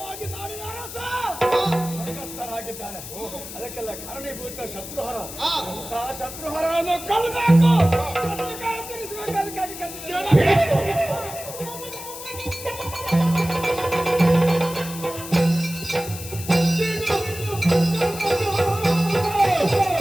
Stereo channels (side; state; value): left; noise; hiss, 11 dB below the sound